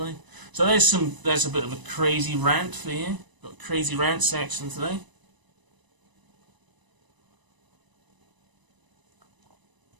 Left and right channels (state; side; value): late; left; 1.0 ms